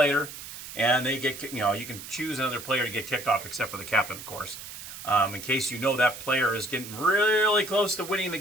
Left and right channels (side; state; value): right; noise; hiss, 12 dB below the sound